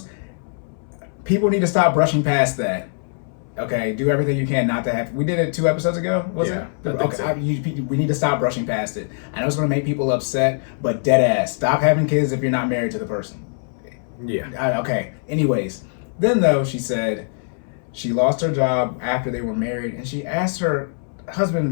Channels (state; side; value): silent; right; 64 dB below the other